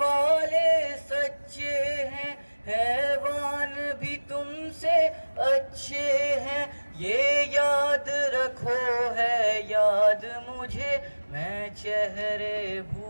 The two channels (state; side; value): inverted; both; correlation -1.00